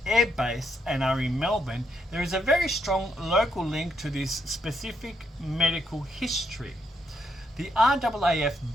Air Base and are in Melbourne, there is a very strong local link to this specific medical history. The RAAF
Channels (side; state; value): both; normal; correlation 0.77